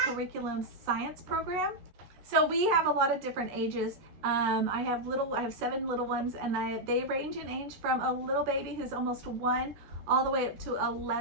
curriculum science program. So we have a lot of different ages. I have 7 little ones, and they range in age from a little baby who's almost 1 all the way up to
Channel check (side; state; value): left; late; 14 ms